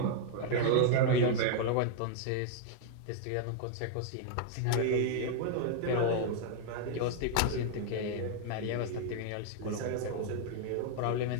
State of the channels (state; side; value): different; both; correlation 0.00